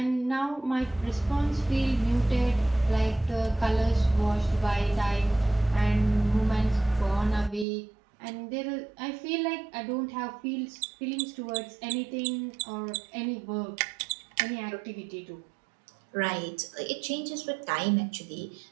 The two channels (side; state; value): left; drops out; at 7.7 s